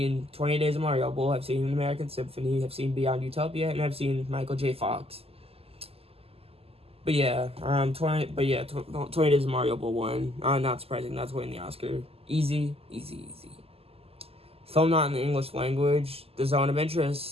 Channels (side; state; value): left; late; 0.29 ms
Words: 20 Days of Mariupol, I've seen An American Symphony, I've seen Beyond Utopia, and I've seen Michael J. Fox. But yeah, 20 Days of Mariupol won. Not surprising, that's winning the Oscar. Easy. Film not in the English language. The Zone of